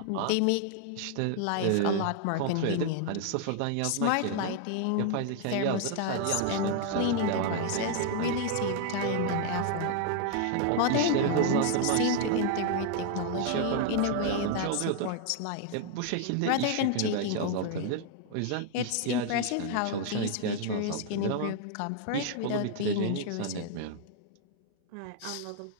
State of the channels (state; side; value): different; both; correlation 0.00